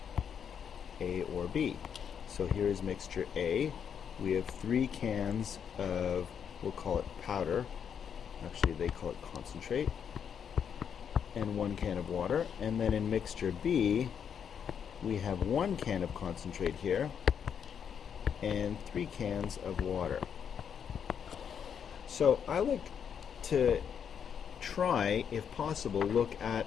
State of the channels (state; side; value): quieter; right; 7.8 dB